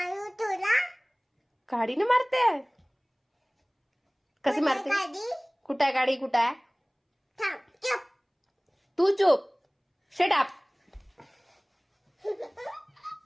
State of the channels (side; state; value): both; identical; correlation 1.00